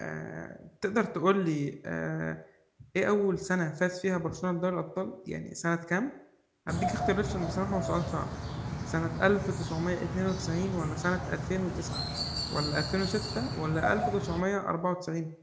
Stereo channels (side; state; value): both; identical; correlation 1.00